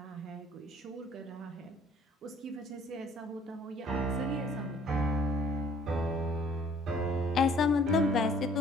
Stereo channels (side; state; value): both; normal; correlation 0.57